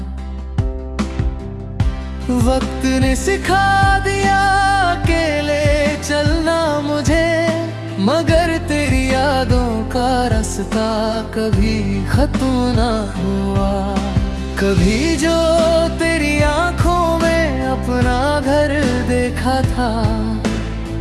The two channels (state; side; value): identical; both; correlation 1.00